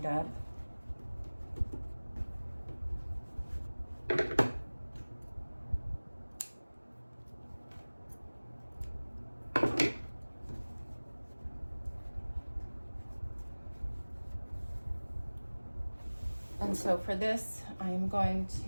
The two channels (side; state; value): both; inverted; correlation -1.00